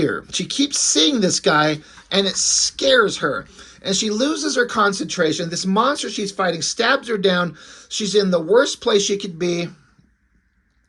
She keeps seeing this guy and it scares her. And she loses her concentration. This monster she's fighting stabs her down. She's in the worst place she could be.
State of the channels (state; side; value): identical; both; correlation 1.00